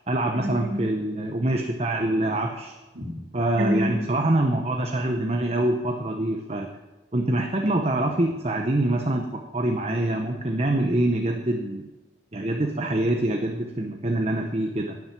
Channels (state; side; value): normal; both; correlation 0.69